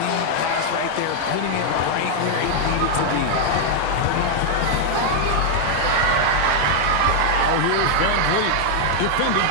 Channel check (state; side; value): different; both; correlation -0.01